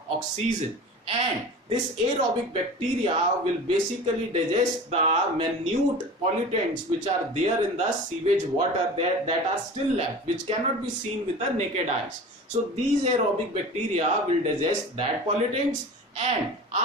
oxygen. And this aerobic bacteria will basically digest the minute pollutants which are there in the sewage water that are still left, which cannot be seen with the naked eyes. So these aerobic bacteria will digest that pollutants, and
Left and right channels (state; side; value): normal; both; correlation 0.36